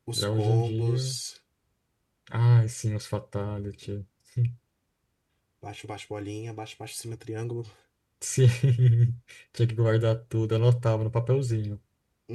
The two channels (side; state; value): both; identical; correlation 1.00